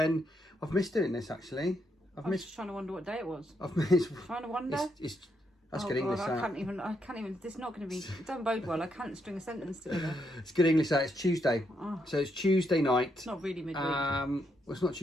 I've missed doing this actually. I was just trying to wonder what day it was. I've missed. Trying to wonder. That's good English. I can't even. This is not going to be. It don't bode well. I can't string a sentence together. It's good English. It's Tuesday. Oh. So it's Tuesday night. It's not really midweek. Well, it's not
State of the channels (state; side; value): normal; both; correlation 0.78